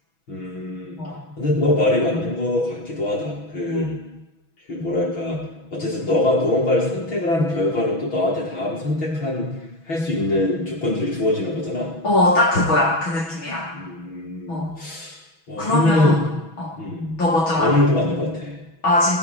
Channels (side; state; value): right; late; 6.1 ms